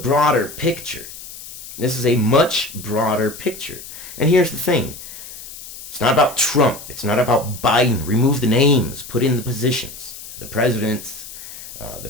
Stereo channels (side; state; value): left; noise; hiss, 13 dB below the sound